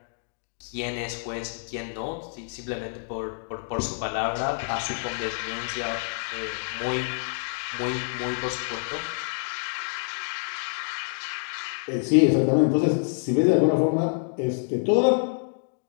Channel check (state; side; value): silent; right; digital silence